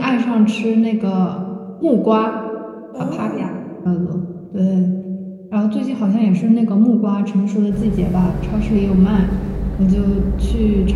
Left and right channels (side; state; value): both; identical; correlation 1.00